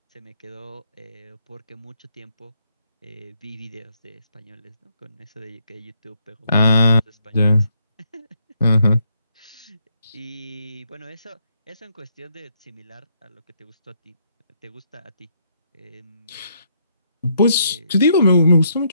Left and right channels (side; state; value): both; inverted; correlation -0.73